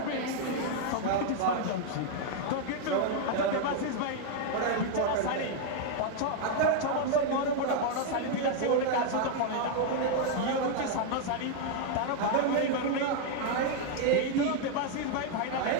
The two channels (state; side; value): different; both; correlation 0.00